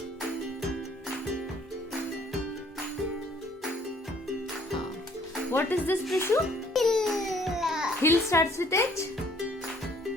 What is this, Prishu? Hill starts with H?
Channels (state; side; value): normal; both; correlation 0.61